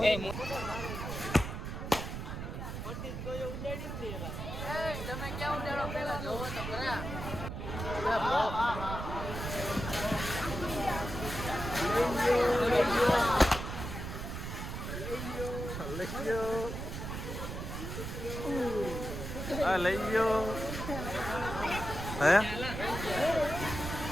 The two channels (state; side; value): noise; right; rumble, 6 dB below the sound